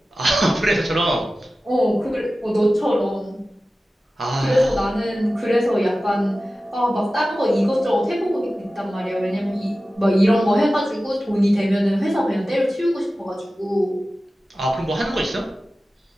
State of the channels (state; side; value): normal; both; correlation 0.95